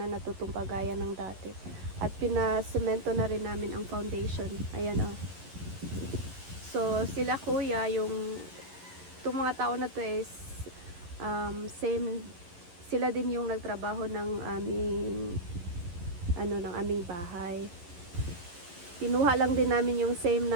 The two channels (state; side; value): late; left; 11 ms